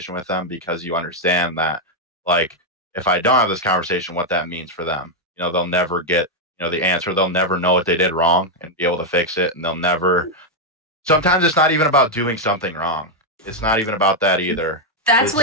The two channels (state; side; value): normal; both; correlation 0.00